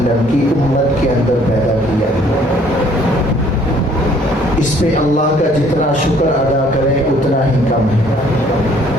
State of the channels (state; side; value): normal; both; correlation 0.60